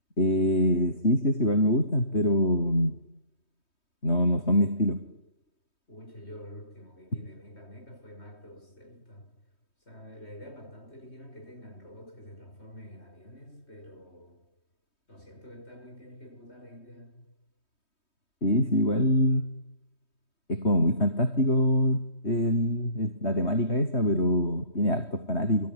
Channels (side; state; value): right; late; 3.2 ms